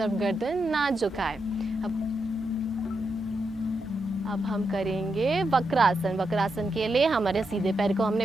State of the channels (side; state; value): both; normal; correlation 0.84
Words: गर्दन ना झुकाए। अब हम करेंगे वक्रासन। वक्रासन के लिए हमारे सीधे पैर को हमने